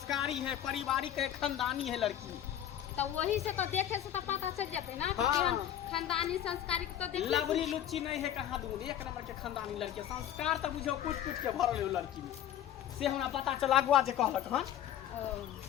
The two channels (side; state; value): right; quieter; 11.1 dB